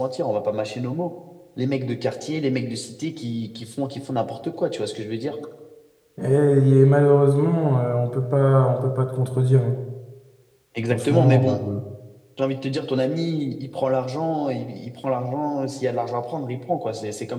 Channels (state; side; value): identical; both; correlation 1.00